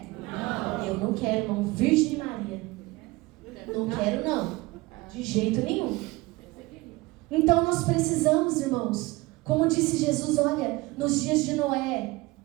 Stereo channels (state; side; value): quieter; left; 22.0 dB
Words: Não. Eu não quero, irmão, Virgem Maria, não quero não, de jeito nenhum. Então nós precisamos, irmãos, como disse Jesus, olha, nos dias de Noé,